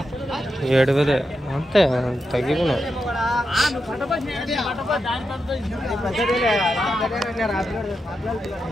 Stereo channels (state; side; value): normal; both; correlation 0.87